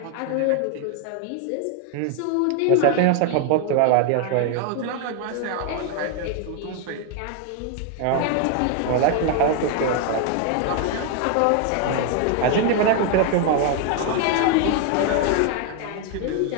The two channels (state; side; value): different; both; correlation 0.01